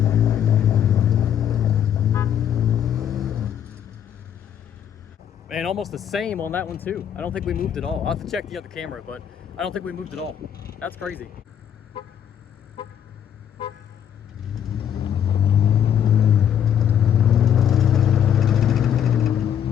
And almost the same on that one too. I don't think we moved at all. I'll have to check the other camera, but I don't think we moved at all. That's crazy.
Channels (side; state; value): right; quieter; 9.2 dB